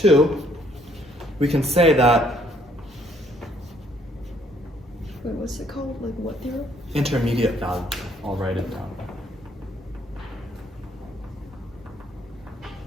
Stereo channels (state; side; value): normal; both; correlation 0.66